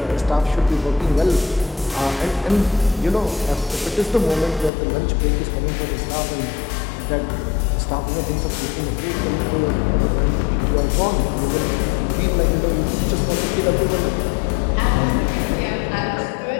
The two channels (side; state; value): right; drops out; at 4.7 s